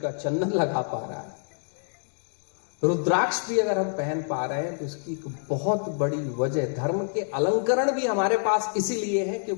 चंदन लगा पा रहा है, रुद्राक्ष भी अगर हम पहन पा रहे हैं, तो उसकी एक बहुत बड़ी वजह, धर्म के अलंकरण भी हमारे पास इसीलिए है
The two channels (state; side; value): silent; right; digital silence